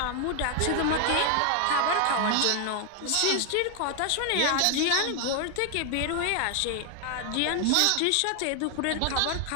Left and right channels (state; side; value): different; both; correlation 0.00